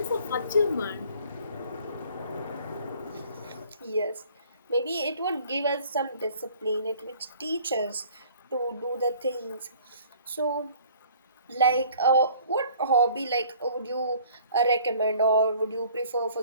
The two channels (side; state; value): both; inverted; correlation -0.54